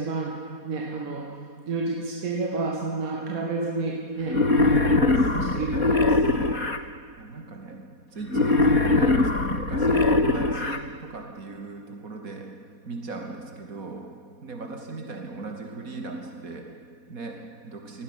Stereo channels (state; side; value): late; left; 4.2 ms